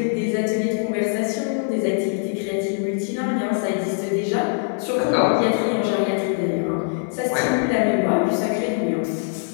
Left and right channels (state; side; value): silent; right; digital silence